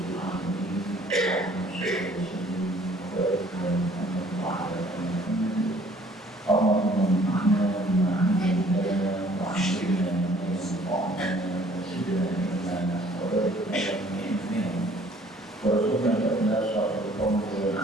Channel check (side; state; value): both; normal; correlation 0.57